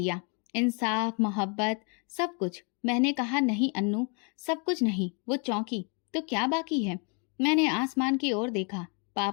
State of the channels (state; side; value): quieter; right; 36.1 dB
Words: इंसाफ, मोहब्बत, सब कुछ। मैंने कहा, नहीं अन्नू, सब कुछ नहीं, वो चौंकी। तो क्या बाकी है? मैंने आसमान की ओर देखा।